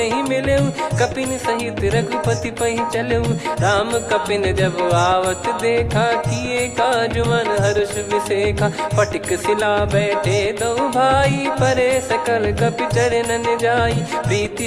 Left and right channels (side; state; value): both; identical; correlation 1.00